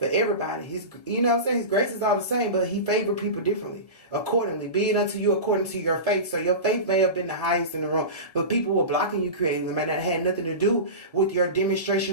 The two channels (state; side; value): late; right; 1.5 ms